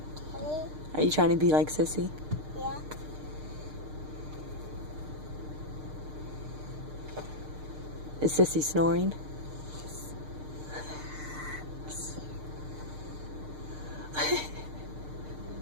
Kelly? Are you trying to be like Sissy? Yeah. Is Sissy snoring?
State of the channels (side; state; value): left; late; 6.6 ms